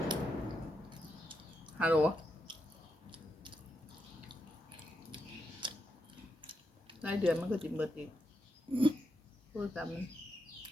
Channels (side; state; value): both; normal; correlation 0.83